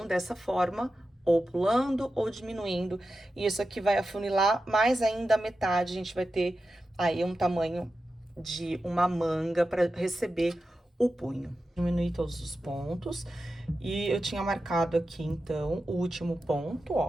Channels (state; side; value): normal; both; correlation 0.91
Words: Dessa forma, ou pulando ou diminuindo. E isso aqui vai afunilar mais ainda a metade. A gente vai ter aí um tamanho de uma manga para receber o punho. Diminuir todos os pontos. E eu tinha marcado aqui, então, o último ponto,